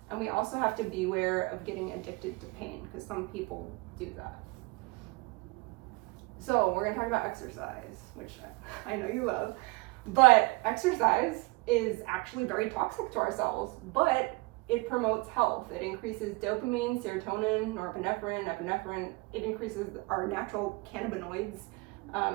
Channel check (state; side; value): quieter; left; 25.0 dB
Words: And we also have to be aware of getting addicted to pain, because some people do that. So we're gonna talk about exercise, which I know you love, but exercise is actually very toxic to our cells, but it promotes health. It increases dopamine, serotonin, norepinephrine, epinephrine. It increases our natural cannabinoids